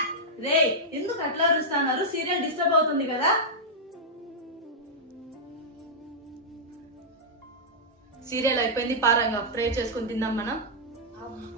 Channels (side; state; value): both; normal; correlation -0.08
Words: రే ఎందుకు అట్లా అరుస్తున్నారు? సీరియల్ డిస్టర్బ్ అవుతుంది కదా. సీరియల్ అయిపోయింది, పారంగా ప్రే చేసుకుని తిందాం మనం.